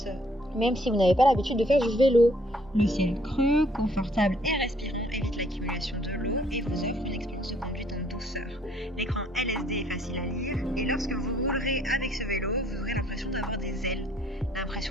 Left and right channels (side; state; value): both; normal; correlation 0.63